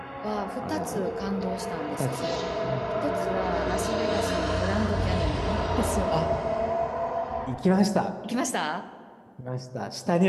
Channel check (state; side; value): identical; both; correlation 1.00